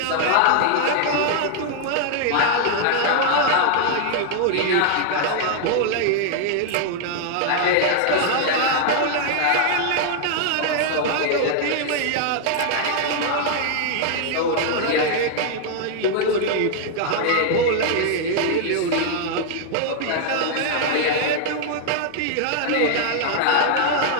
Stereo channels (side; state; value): both; different; correlation 0.00